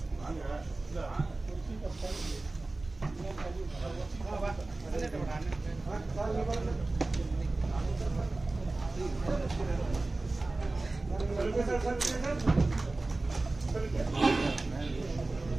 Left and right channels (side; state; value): left; quieter; 3.1 dB